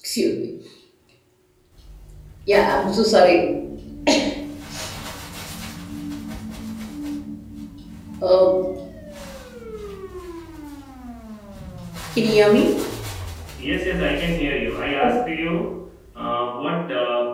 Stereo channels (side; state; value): both; identical; correlation 1.00